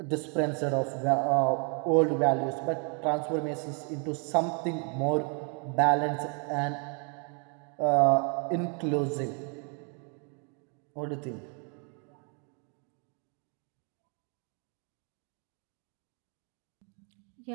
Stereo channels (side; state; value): left; quieter; 38.5 dB